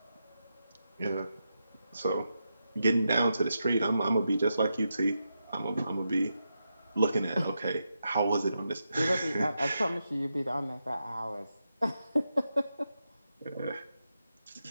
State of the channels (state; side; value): inverted; both; correlation -0.86